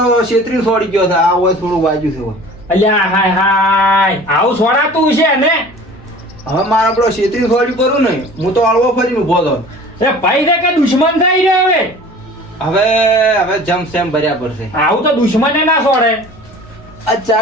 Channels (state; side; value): normal; both; correlation 0.44